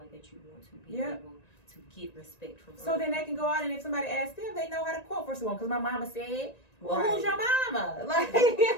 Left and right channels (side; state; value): right; late; 1.9 ms